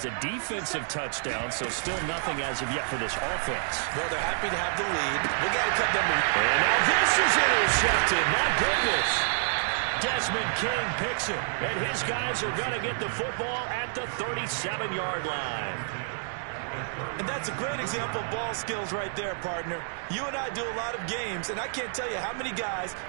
a defensive touchdown, so still nothing as of yet for this offense. Well, they're happy to have the lead. We got to cut them loose. And now this is intercepted. My goodness. Desmond King picks it, and his guys are going to get the football at the 37-yard line. And that's a great example of ball skills right there, partner. You and I do a lot of games, and I can't tell you how many guys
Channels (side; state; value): left; silent; digital silence